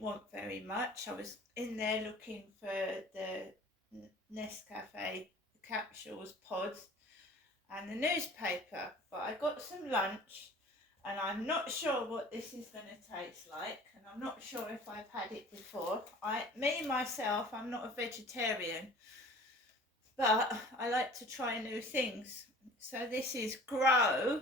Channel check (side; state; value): both; normal; correlation 0.46